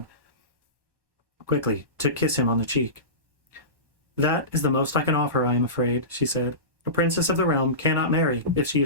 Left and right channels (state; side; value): late; left; 1.1 ms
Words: quickly to kiss him on the cheek. That is the most I can offer, I am afraid, she said. A princess of the realm cannot marry if she